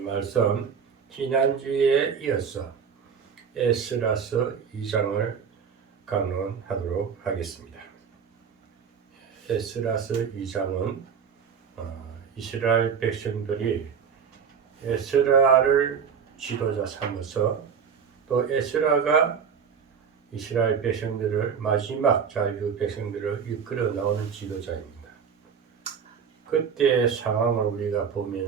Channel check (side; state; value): left; quieter; 6.7 dB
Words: 말씀 지난주에 이어서 에스라서 2장을 강론하도록 하겠습니다. 에스라서 2장은 이스라엘 백성들이 에스라를 지도자 삼아서 또 에스라가 이스라엘 백성들을 마지막 자유 백성들을 이끌어 나오는 지도자입니다. 그때의 상황을 우리가